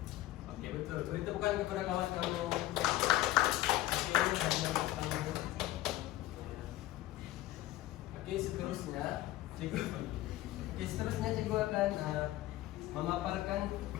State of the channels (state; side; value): quieter; right; 16.1 dB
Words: Oke, betul. Beri tepukan kepada kawan kamu. Oke, seterusnya cikgu akan memaparkan